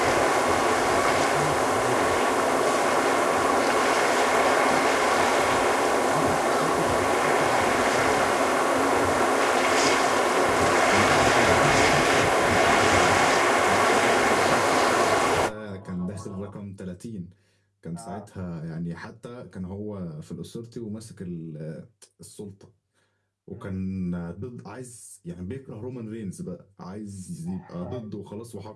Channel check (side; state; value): both; identical; correlation 1.00